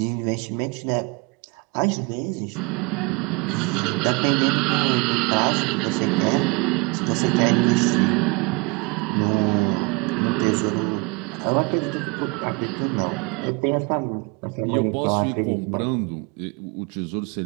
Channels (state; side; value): quieter; left; 28.4 dB